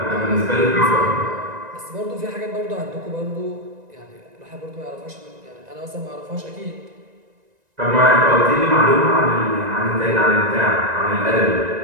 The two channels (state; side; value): late; left; 1.9 ms